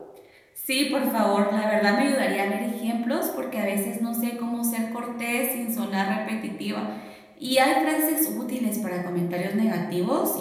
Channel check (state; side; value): identical; both; correlation 1.00